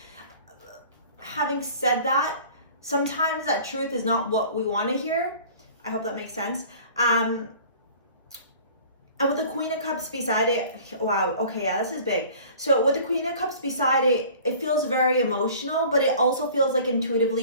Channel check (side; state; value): both; inverted; correlation -0.47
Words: Having said that, sometimes that truth is not what we want to hear. I hope that makes sense. And with the Queen of Cups beside it, wow, okay, yeah, this is big. So with the Queen of Cups beside it, it feels very emotional, but it also feels like